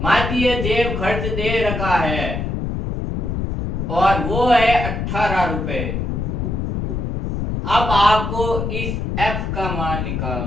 माध्य जेब खर्च दे रखा है और वो है 18 रुपए। अब आपको इस एफ का मान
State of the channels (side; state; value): left; noise; rumble, 2 dB below the sound